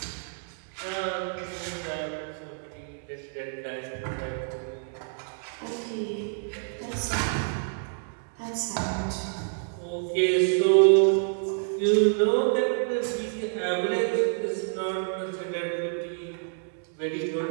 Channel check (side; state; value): left; silent; 59 dB below the other